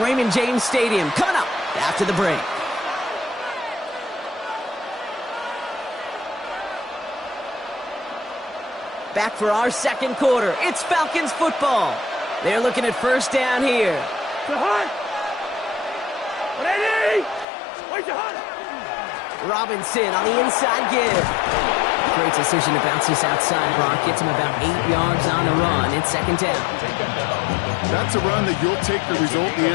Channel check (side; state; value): right; drops out; at 17.4 s